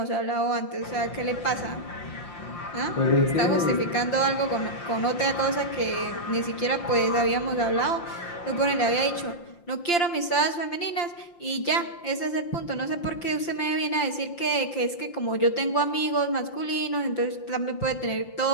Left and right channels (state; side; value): late; right; 5.8 ms